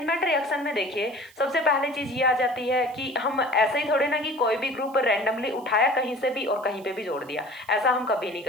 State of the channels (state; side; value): noise; right; hiss, 26 dB below the sound